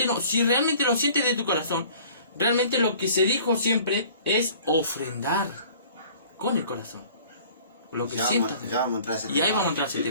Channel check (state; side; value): inverted; both; correlation -0.50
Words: no. Si realmente lo sientes de tu corazón, realmente lo que se dijo siempre es ofrendar con el corazón. Lo que sientas. Ya vamos a entrar a ese Y ahí tema. vamos a entrar a ese